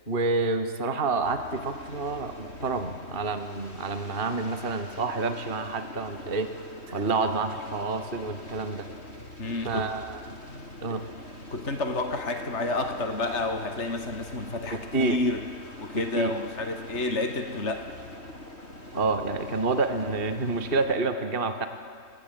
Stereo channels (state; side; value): late; right; 3.1 ms